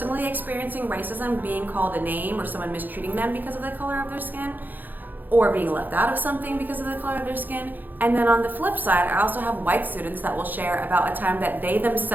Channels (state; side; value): late; left; 0.086 ms